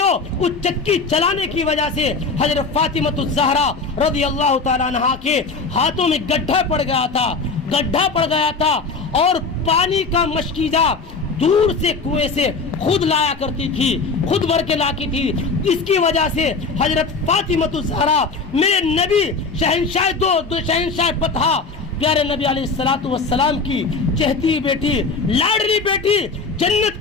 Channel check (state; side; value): quieter; right; 4.3 dB